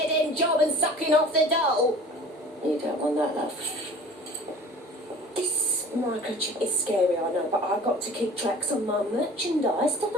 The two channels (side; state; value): both; normal; correlation 0.44